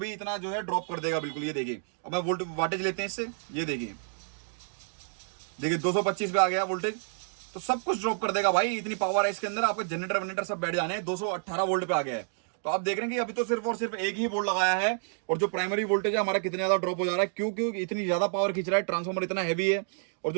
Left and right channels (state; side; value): silent; left; digital silence